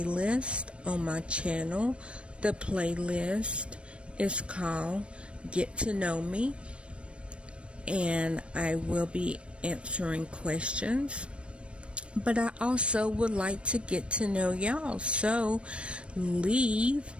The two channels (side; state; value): left; late; 0.059 ms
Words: on my channel. The playlist is called Get to Know Me, and I will be answering questions, but I also would like to get to know y'all, so leave